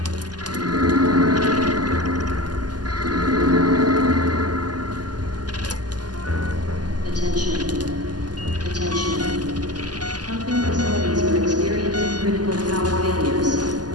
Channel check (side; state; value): left; late; 0.70 ms